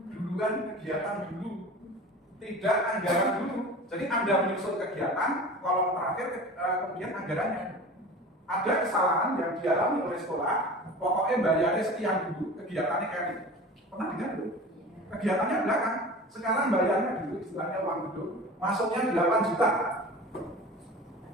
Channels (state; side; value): normal; both; correlation 0.37